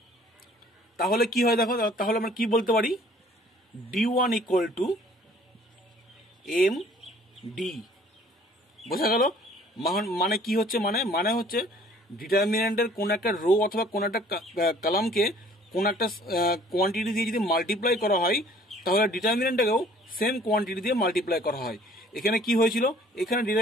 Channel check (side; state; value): both; normal; correlation 0.55